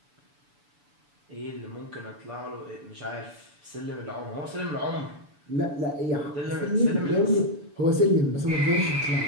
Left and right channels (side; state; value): left; late; 7.0 ms